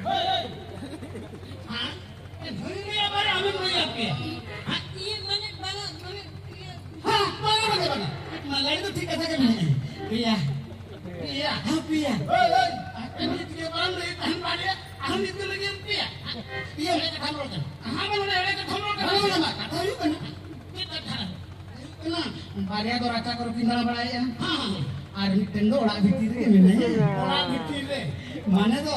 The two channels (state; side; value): identical; both; correlation 1.00